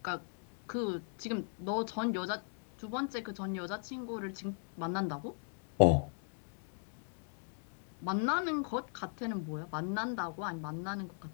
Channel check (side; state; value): right; silent; 52 dB below the other